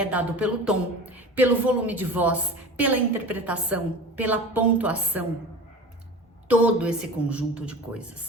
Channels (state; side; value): normal; both; correlation 0.35